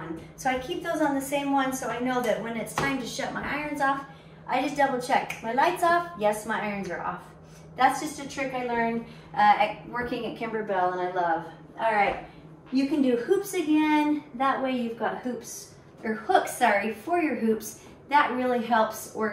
So I keep those on the same one so I know that when it's time to shut my irons off, I just double check. My light's off? Yes, my irons are off. That's just a trick I learned working at Kimberbell, and I love. All right, you can do hoops again. That way you've got hoops, or hooks, sorry, for your hoops. That really helps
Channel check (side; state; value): both; identical; correlation 1.00